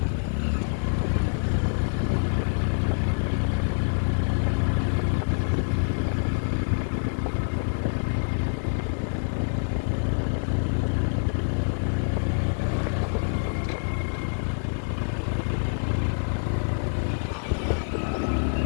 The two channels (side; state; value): right; silent; 61 dB below the other